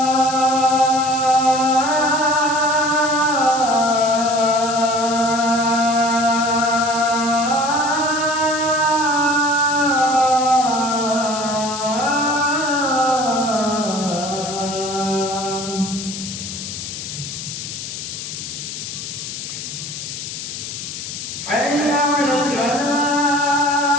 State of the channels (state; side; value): noise; left; hiss, 8 dB below the sound